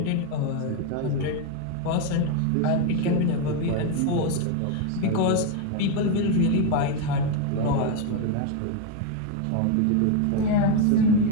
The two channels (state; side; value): different; both; correlation 0.02